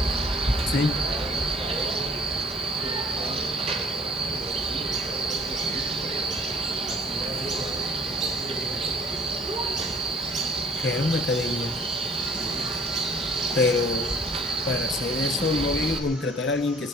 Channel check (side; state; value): both; normal; correlation 0.54